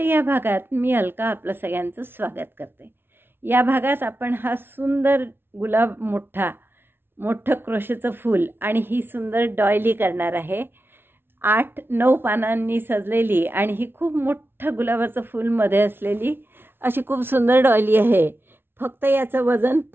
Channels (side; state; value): left; late; 0.11 ms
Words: या भागात मी अलका आपलं सगळ्यांचं स्वागत करते। या भागात आपण हा सुंदर गुलाब मोठं क्रोशेचं फूल आणि ही सुंदर डॉयली करणार आहे। 8-9 पानांनी सजलेली आणि ही खूप मोठं गुलाबाचं फूल मध्ये असलेली अशी खूप सुंदर डॉयली आहे। फक्त याचं वजन